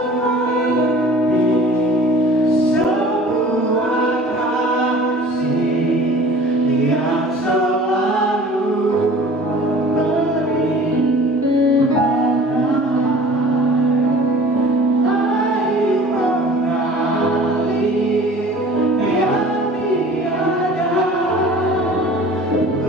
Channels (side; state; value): both; normal; correlation 0.45